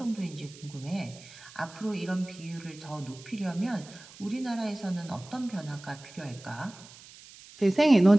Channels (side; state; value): right; noise; hiss, 20 dB below the sound